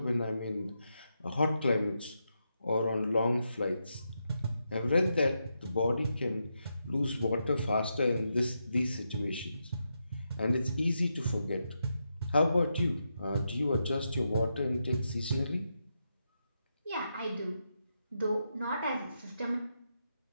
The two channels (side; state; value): both; inverted; correlation -0.84